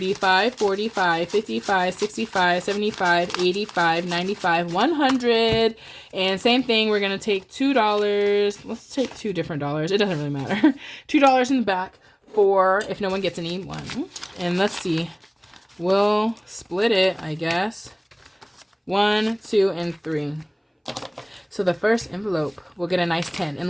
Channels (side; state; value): both; identical; correlation 1.00